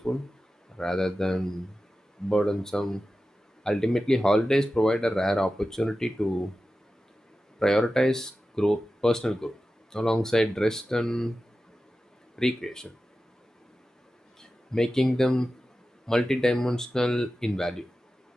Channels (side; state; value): both; normal; correlation 0.94